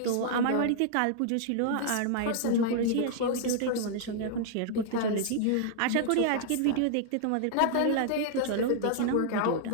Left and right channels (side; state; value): both; different; correlation -0.01